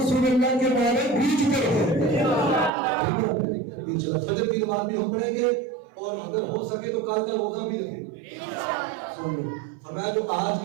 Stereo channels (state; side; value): drops out; left; at 2.7 s